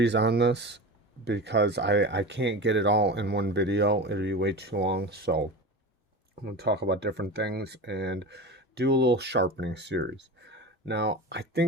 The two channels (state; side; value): normal; both; correlation 0.28